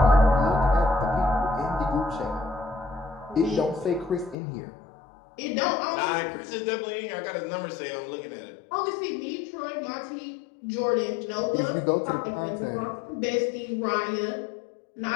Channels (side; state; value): right; drops out; at 4.4 s